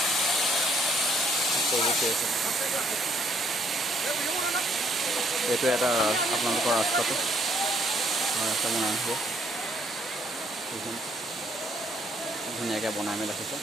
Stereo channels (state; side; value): normal; both; correlation 0.68